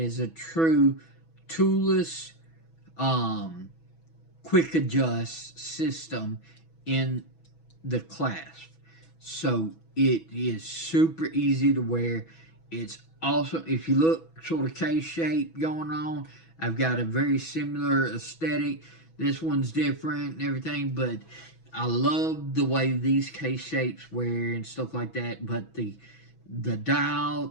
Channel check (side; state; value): right; late; 6.1 ms